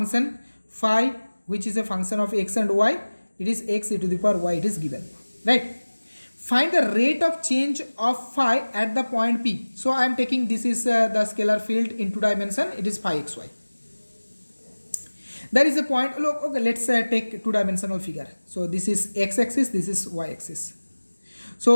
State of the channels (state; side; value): inverted; both; correlation -1.00